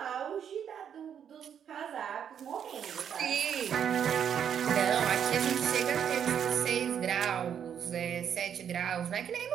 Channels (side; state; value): left; quieter; 8.5 dB